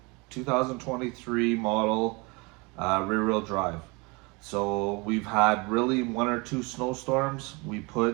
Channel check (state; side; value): quieter; left; 27.6 dB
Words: 2023 model rear-wheel drive. So we've had really one or two snowstorms. We